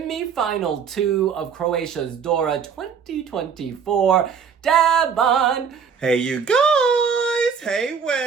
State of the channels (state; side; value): quieter; left; 6.6 dB